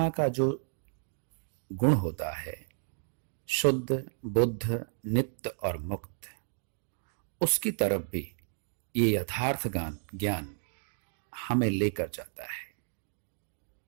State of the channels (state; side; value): silent; left; digital silence